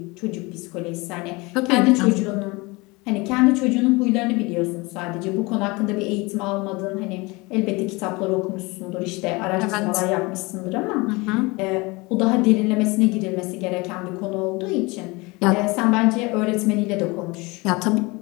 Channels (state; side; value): quieter; right; 24.8 dB